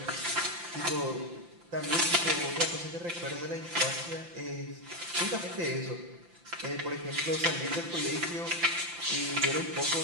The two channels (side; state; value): left; late; 5.8 ms